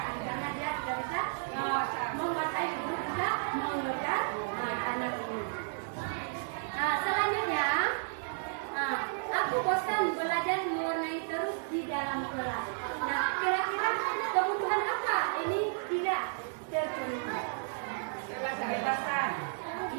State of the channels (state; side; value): silent; left; digital silence